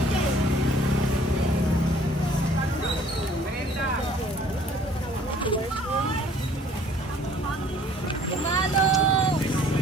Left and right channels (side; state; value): both; normal; correlation 0.56